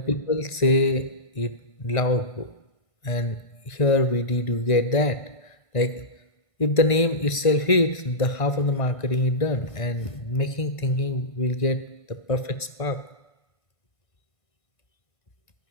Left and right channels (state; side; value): late; right; 1.5 ms